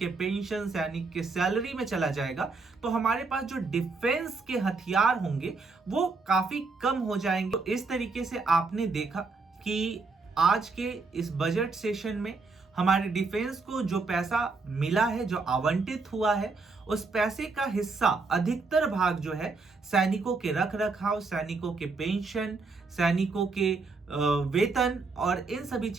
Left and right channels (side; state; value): left; quieter; 4.0 dB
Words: पेंशन, सैनिक के सैलरी में चला जाएगा। तो हमारे पास जो डिफेंस के हथियार होंगे वो काफी कम हो जाएंगे। तो इस तरीके से आपने देखा कि आज के इस बजट सेशन में हमारे डिफेंस को जो पैसा मिला है, जो आवंटित हुआ है, उस पैसे का हिस्सा अधिकतर भाग जो है सैनिकों के रख रखाव, सैनिकों के पेंशन, सैनिकों के वेतन और इन सभी